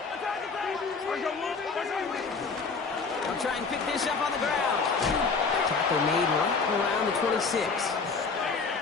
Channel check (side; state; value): right; quieter; 4.7 dB